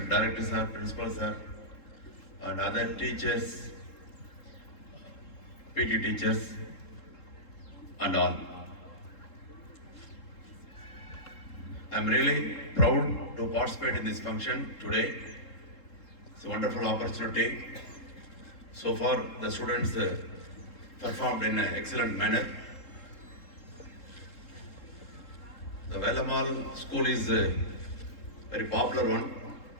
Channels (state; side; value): late; right; 3.7 ms